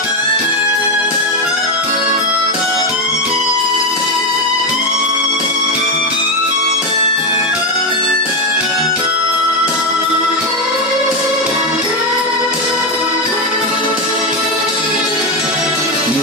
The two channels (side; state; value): both; normal; correlation 0.09